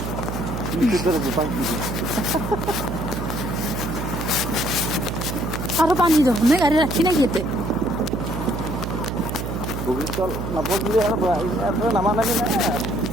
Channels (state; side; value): noise; right; hum, 4 dB below the sound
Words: পুলিচৰ দৰে জোতা কিনিছে আৰু পানী যাব নে গাড়ী ৰাখি নেকি ইয়াতে বগীতল নাপাওঁ বুলি আৰু ইয়াৰ নামা নামি নাই